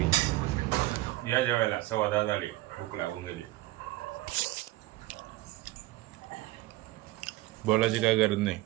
या जेवायला 10:15 झाली. भूक लागून गेली. बोलायची काय गरज नाही.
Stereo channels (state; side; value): quieter; left; 18.3 dB